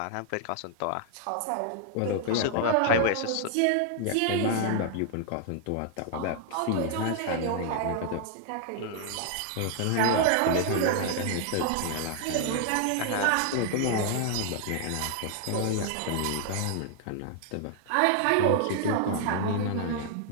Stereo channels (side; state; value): both; different; correlation 0.00